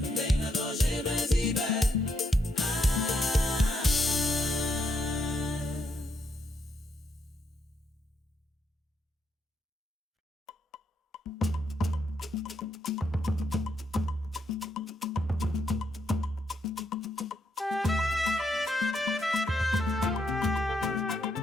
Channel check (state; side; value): normal; both; correlation 0.77